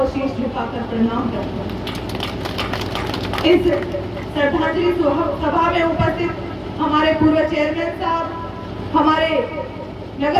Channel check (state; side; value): identical; both; correlation 1.00